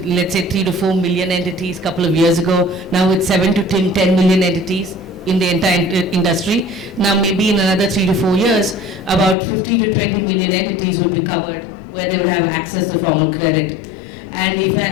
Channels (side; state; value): right; drops out; at 9.3 s